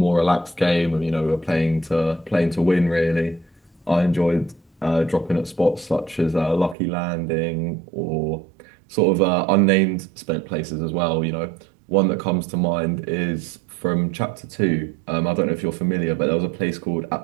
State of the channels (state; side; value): drops out; left; at 6.8 s